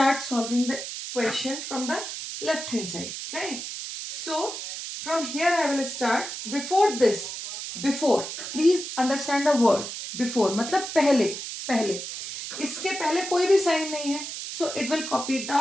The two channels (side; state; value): right; noise; hiss, 7 dB below the sound